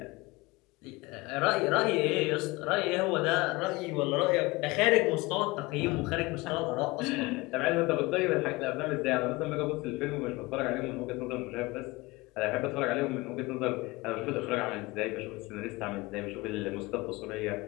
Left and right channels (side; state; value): right; quieter; 22.6 dB